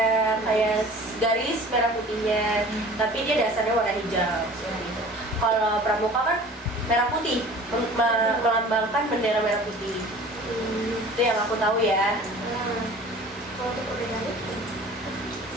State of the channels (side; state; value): both; normal; correlation 0.44